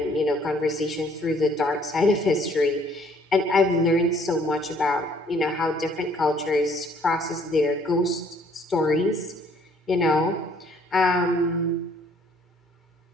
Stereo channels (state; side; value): normal; both; correlation 0.61